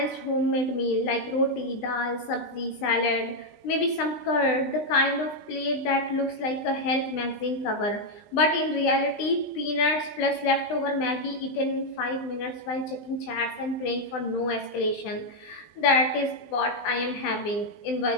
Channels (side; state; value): right; late; 20 ms